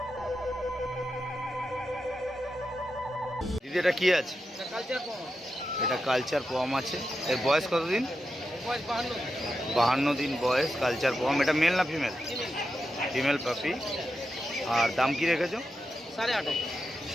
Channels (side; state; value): both; normal; correlation 0.88